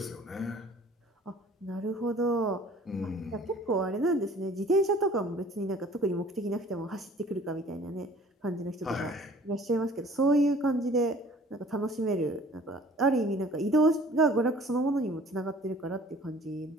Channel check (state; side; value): normal; both; correlation 0.51